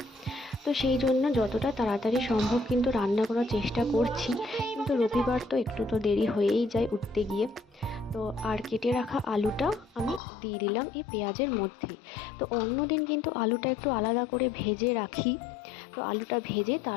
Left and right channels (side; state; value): right; drops out; at 10.2 s